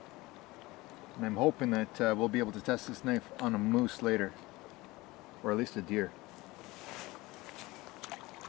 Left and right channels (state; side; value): quieter; right; 21.0 dB